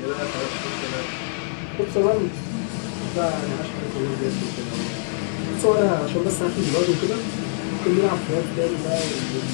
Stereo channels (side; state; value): right; silent; digital silence